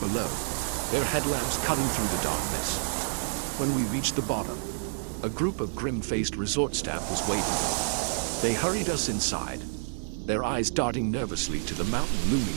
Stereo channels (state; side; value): silent; left; digital silence